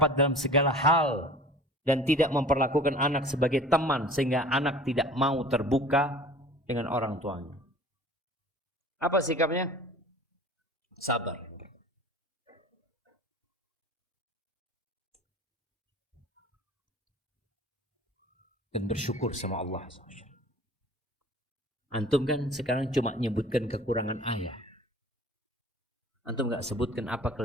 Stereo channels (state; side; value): normal; both; correlation 0.44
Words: dalam segala hal, dan tidak memperlakukan anak sebagai teman sehingga anak tidak mau terbuka dengan orang tuanya. Apa sikapnya? Sabar. Dan bersyukur sama Allah. Antum kan sekarang cuma nyebutkan kekurangan ayah. Antum gak sebutkan apa